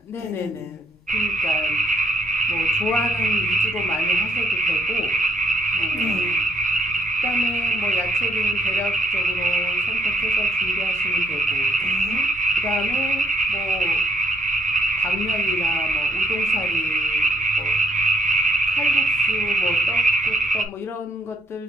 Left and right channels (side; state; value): both; normal; correlation 0.68